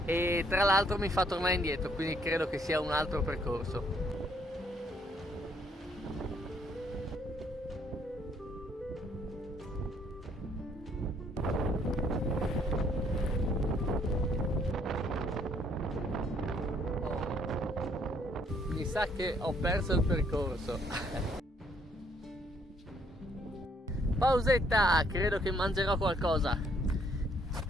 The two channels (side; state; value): both; normal; correlation 0.67